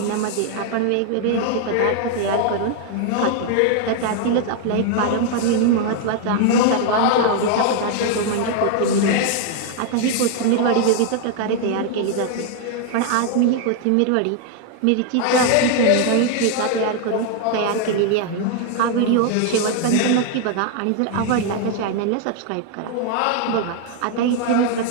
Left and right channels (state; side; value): different; both; correlation 0.00